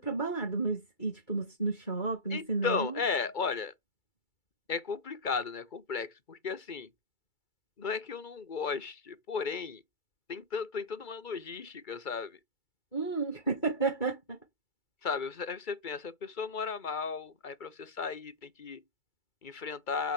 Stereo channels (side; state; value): right; late; 2.3 ms